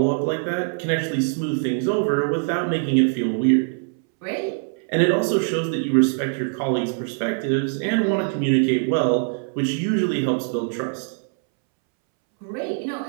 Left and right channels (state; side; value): silent; left; 64 dB below the other